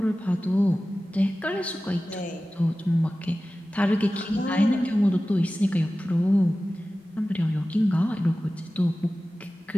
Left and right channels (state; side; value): normal; both; correlation 0.96